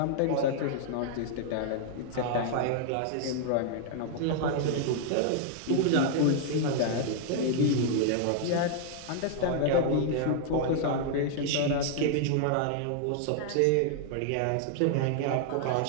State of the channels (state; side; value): different; both; correlation 0.00